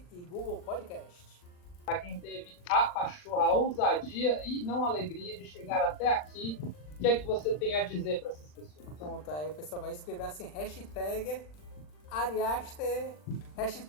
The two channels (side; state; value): right; late; 40 ms